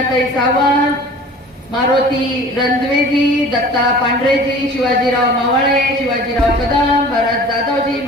सावंत, मारुती रणद्वेजी, दत्ता पांढरेजी, शिवाजीराव मावळे, शिवाजीराव कदम, भरत जाधवजी,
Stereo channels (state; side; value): normal; both; correlation 0.44